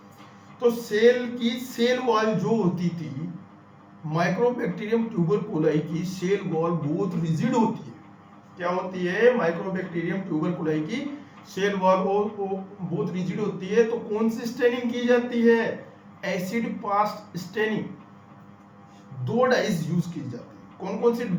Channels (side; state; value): both; identical; correlation 1.00